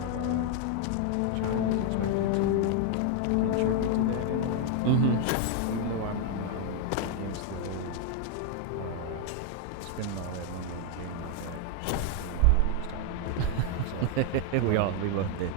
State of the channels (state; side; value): different; both; correlation 0.00